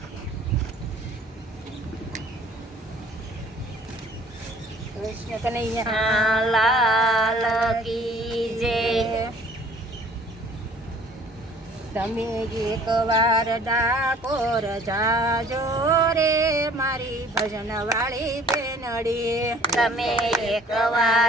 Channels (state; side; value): normal; both; correlation 0.54